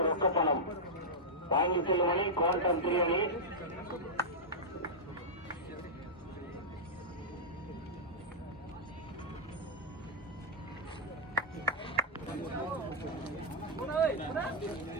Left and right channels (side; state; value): both; normal; correlation -0.07